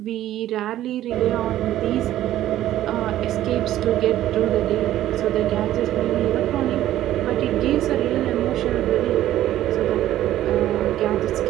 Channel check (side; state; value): left; quieter; 13.3 dB